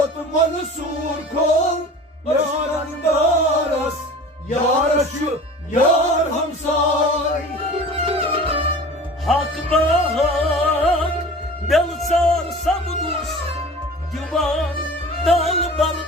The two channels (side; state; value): both; normal; correlation 0.40